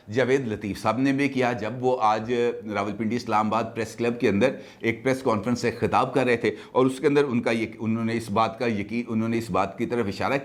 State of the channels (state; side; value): identical; both; correlation 1.00